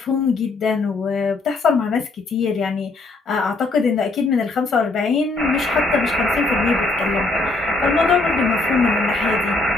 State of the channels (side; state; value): right; quieter; 3.3 dB